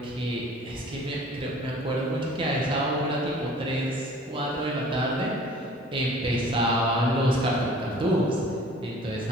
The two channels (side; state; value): both; normal; correlation 0.49